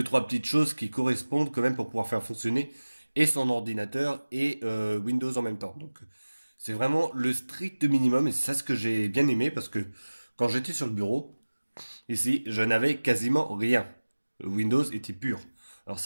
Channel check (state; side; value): inverted; both; correlation -1.00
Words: trois petites choses qui correspondent quand même pour pouvoir faire fonctionner et son ordinateur et Windows en même temps. Donc c'est vraiment le strict minimum et c'est ça ce que j'ai bien aimé parce que quand j'étais sur le bureau, ici, je n'avais quasiment rien. Windows était pur. Alors